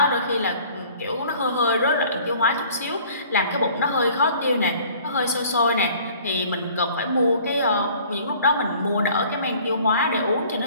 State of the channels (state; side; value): inverted; both; correlation -0.52